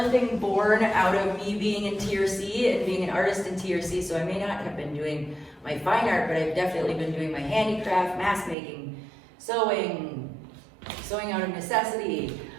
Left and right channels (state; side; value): drops out; left; at 8.6 s